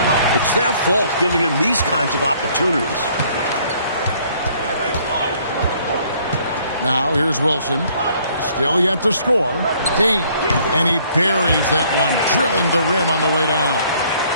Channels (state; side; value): inverted; both; correlation -0.62